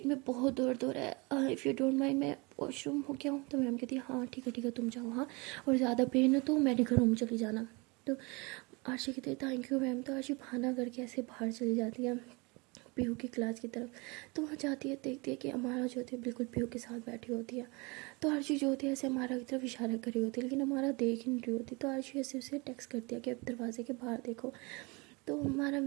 में बहुत दर्द हो रहा है, इफ़ यू डोंट माइंड मैं वॉशरूम हो गया हूँ। तो मैम कहती है हाँ ठीक है तुम जाओ, हाँ और ज़्यादा पेन है तो मेडिकल रूम चली जाना। तो आरसी कहती है थैंक यू मैम। तो आरसी बहाना करके ऐसे बाहर चली जाती है पीहू की क्लास की तरफ। तो वहाँ जाती है, देखती है कि अमारा जो होती है बिल्कुल पीहू के साथ बैठी होती है। तो आरशी जो होती है ऐसे अमारा की तरफ इशारा कर रही होती है, लेकिन अमारा देख ही नहीं रही होती। तो आरशी ऐसे उसे टेक्स्ट करती है कि अब दरवाजे के बाहर देखो। तो हमारा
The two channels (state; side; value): quieter; left; 27.9 dB